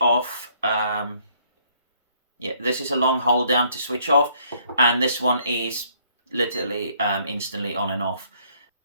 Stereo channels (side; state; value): both; inverted; correlation -0.65